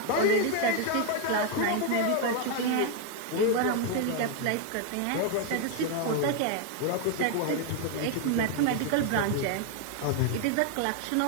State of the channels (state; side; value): different; both; correlation 0.01